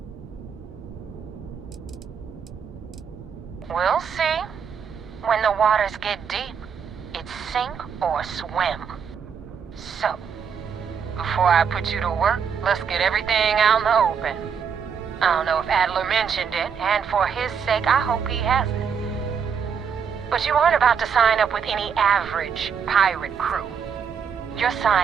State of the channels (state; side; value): quieter; left; 6.8 dB